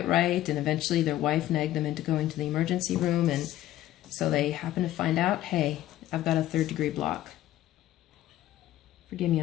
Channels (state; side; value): quieter; right; 14.0 dB